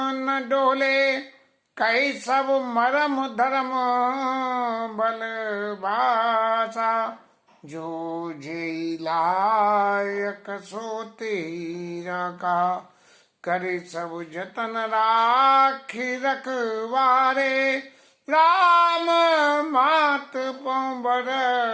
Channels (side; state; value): both; identical; correlation 1.00